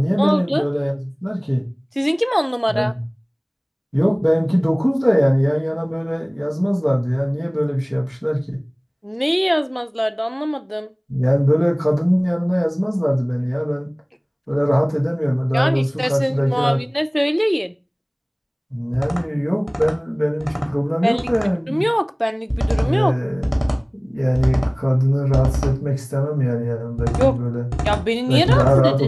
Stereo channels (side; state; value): both; identical; correlation 1.00